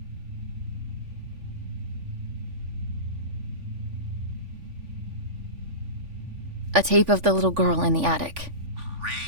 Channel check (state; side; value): late; left; 3.5 ms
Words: A tape of the little girl in the attic.